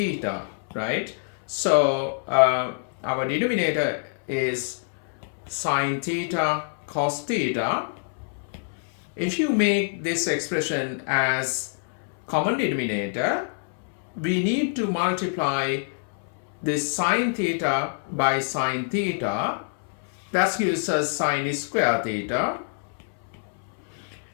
right? So our denominator is sine theta cos theta. If you make this expression as common denominator, we need to multiply this sine theta by sine theta. That gives us sine square theta.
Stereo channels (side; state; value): right; silent; 61 dB below the other